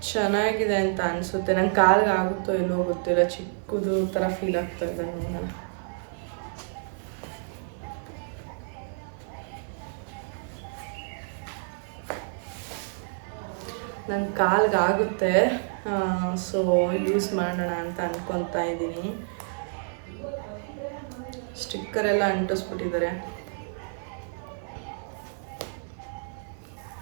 ಚೆನ್ನಾಗಿದೆ ಅಂತ ಅನಿಸುತ್ತೆ. ನಂಗೆ ಕಾಲಿಗೆ ಆಗುತ್ತೋ ಇಲ್ಲೋ ಗೊತ್ತಿಲ್ಲ, ಚಿಕ್ಕದು ಥರ ಫೀಲ್ ಆಗ್ತಾ ಇದೆ. ನೋಡೋಣ. ನಂಗೆ ಕಾಲಿಗೆ ಆಗುತ್ತೆ. ಸೊ ಯೂಸ್ ಮಾಡೋಣ ಅಂತ ಅಂದ್ಕೊತಾ ಇದ್ದೀನಿ. ಸ್ಟಿಕ್ಕರ್ ಎಲ್ಲ ಅಂಟಿಸ್ಬಿಟ್ಟಿದ್ದಾರೆ.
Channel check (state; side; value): silent; left; 59 dB below the other